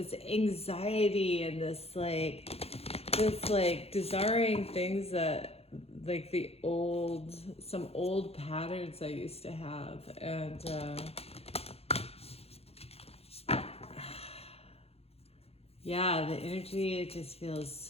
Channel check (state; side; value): late; right; 0.29 ms